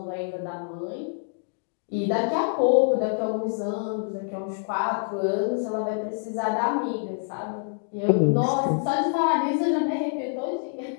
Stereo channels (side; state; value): right; silent; digital silence